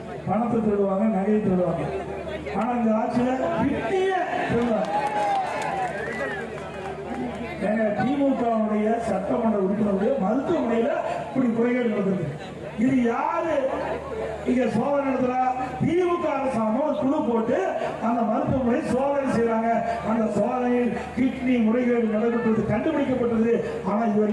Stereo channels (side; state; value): both; identical; correlation 1.00